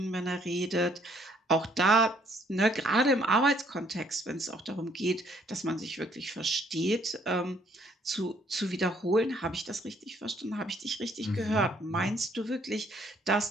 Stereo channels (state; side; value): normal; both; correlation 0.64